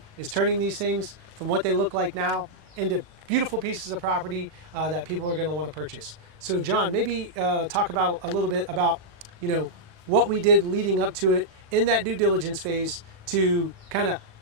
is turning these things from what they look like now into beautiful pieces of property that people are going to want to purchase. So John, maybe talk about a little bit about, you know, what we did leading up to it in that due diligence phase to kind of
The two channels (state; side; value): late; left; 38 ms